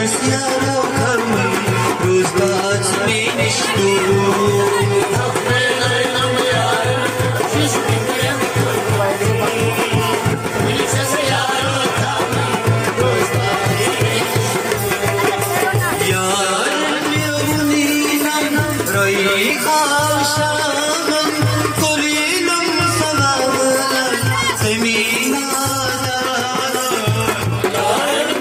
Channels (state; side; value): identical; both; correlation 1.00